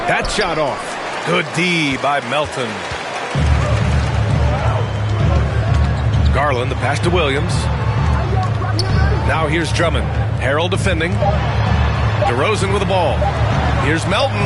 That shot off. Good D by Melton. Garland, the pass to Williams. Now here's Drummond. Harrell defending. DeRozan with the ball. Here's Melton.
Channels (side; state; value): both; identical; correlation 1.00